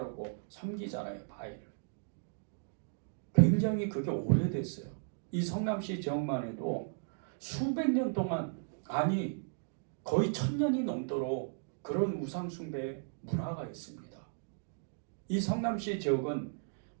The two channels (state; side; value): silent; left; digital silence